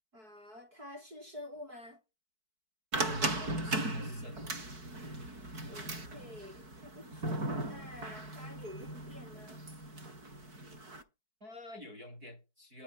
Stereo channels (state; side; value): late; left; 4.6 ms